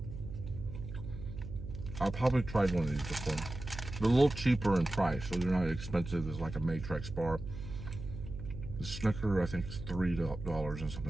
I've probably tried one of these before. They're a little cheaper in price, so they're not as expensive as like a Matrix bar. The Snicker, I think, is $3 and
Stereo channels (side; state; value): right; noise; hum, 9 dB below the sound